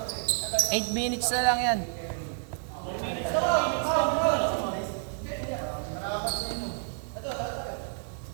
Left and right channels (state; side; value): silent; left; 58 dB below the other